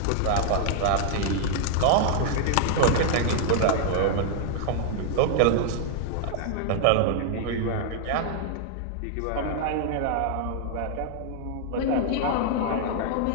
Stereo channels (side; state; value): both; different; correlation 0.00